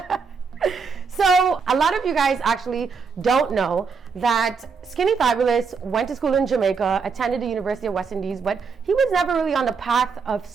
So, a lot of you guys actually don't know that Skinny Fabulous went to school in Jamaica, attended the University of West Indies, but he was never really on the path of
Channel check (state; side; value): quieter; left; 5.4 dB